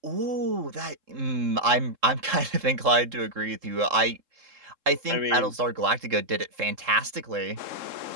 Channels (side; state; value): left; late; 3.7 ms